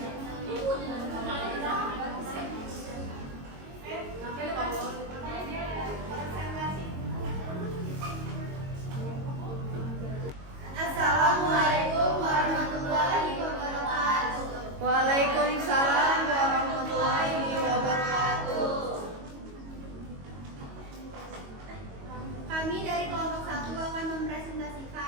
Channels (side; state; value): left; late; 22 ms